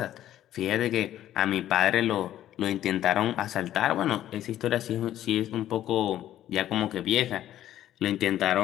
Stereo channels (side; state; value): right; quieter; 12.4 dB